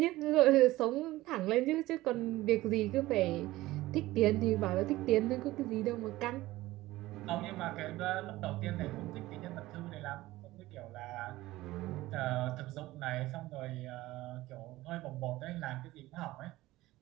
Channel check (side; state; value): left; quieter; 17.6 dB